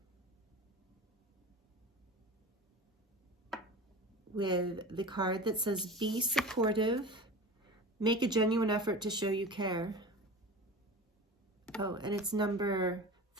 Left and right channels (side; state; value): both; normal; correlation 0.32